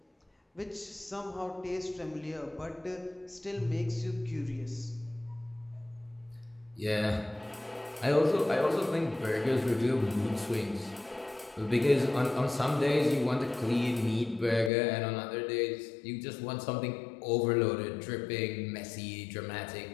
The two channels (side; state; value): right; drops out; at 14.7 s